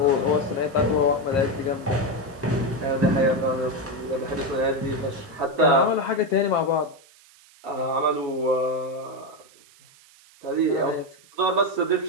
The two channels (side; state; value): right; noise; hiss, 27 dB below the sound